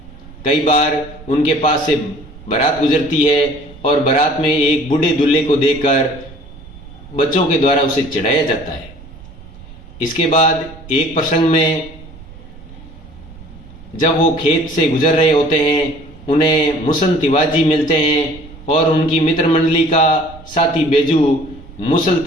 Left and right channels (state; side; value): noise; right; rumble, 19 dB below the sound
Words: कई बार उनके पास से बारात गुजरती है और बारात में एक बूढ़े दूल्हे को देखकर बच्चों के द्वारा उसे चढ़ाया जाता है। इसके बाद एक प्रसंग में जब वो खेत से गुजर रहे होते हैं, उन्हें मुसन तिवारी मिलते हैं और उनकी मित्र मंडली का साथी बेजू मुसल